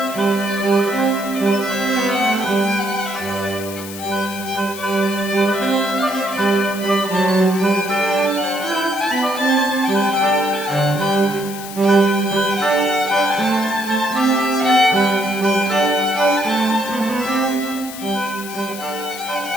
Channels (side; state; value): left; noise; hiss, 13 dB below the sound